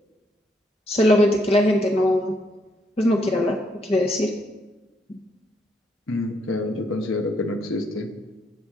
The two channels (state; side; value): normal; both; correlation 0.74